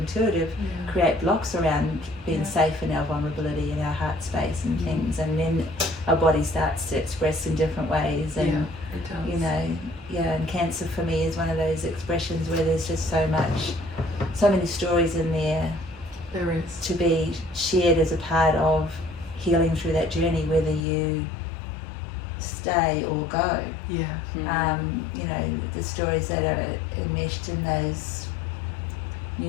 create blocks around being safe in our vulnerability, in our heart space and things, and then our body starts to express in different ways. And it does. you know, and cancer for me is one of those expressions where there's just so many stories in there. There is. To be shared as a part of healing through that journey, whether you stay or go. You know, the stories that are enmeshed in those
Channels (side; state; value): right; drops out; at 20.9 s